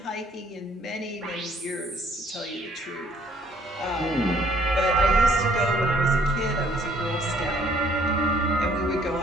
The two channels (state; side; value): normal; both; correlation 0.61